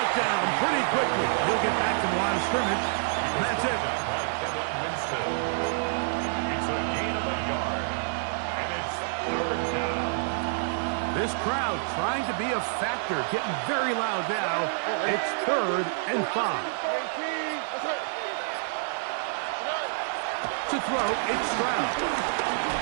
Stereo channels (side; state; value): left; silent; digital silence